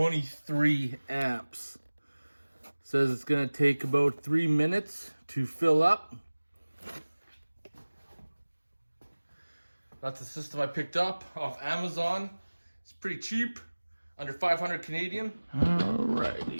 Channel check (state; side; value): inverted; both; correlation -1.00